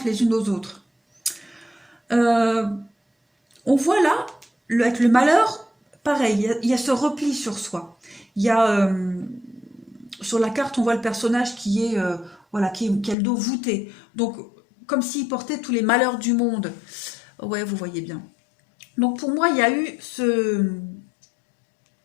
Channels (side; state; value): right; drops out; at 13.2 s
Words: les unes aux autres. On voit là, avec le malheur, pareil, il y a ce repli sur soi. Il y a, sur la carte, on voit le personnage qui est, voilà, qui a le dos voûté. Donc, comme s'il portait tous les malheurs du monde. Ouais, vous voyez bien. Donc, pour moi, il y a eu ce